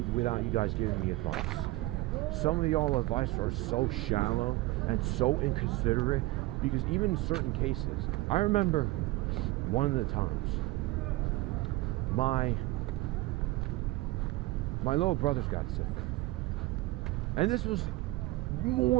without you guys giving me advice. Some of y'all advice are so shallow and so inconsiderate, because even in certain cases, I remember one of the times my little brothers got sick, and this was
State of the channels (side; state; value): left; quieter; 19.6 dB